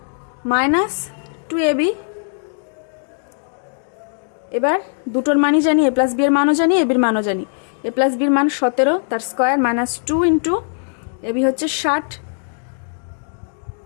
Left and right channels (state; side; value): silent; right; digital silence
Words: -2ab। এবার দুটোর মানই জানি, a + b এর মানও জানি, ab এর মানও জানি। a + b এর মান 17, তার স্কয়ার -2 × ab হচ্ছে 60,